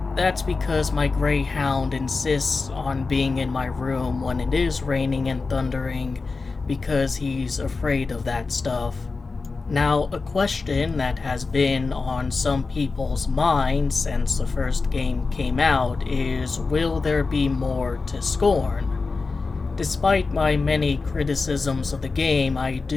that's because my greyhound insists on being in my room when it is raining and thundering because he's afraid of that stuff. Now, a question that has been on some people's minds since the first game came out is, will there be more to Scorn? Despite my many criticisms of the game, I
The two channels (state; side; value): quieter; right; 4.1 dB